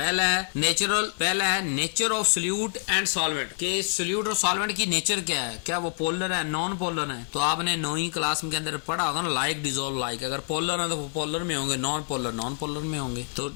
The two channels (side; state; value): right; silent; 59 dB below the other